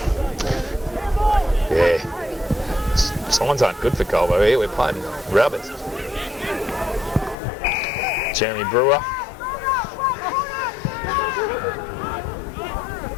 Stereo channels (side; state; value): right; drops out; at 7.4 s